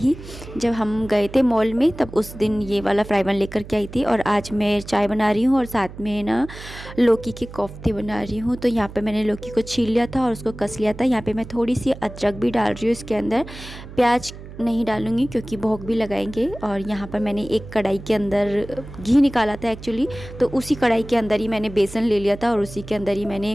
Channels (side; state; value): right; noise; hum, 14 dB below the sound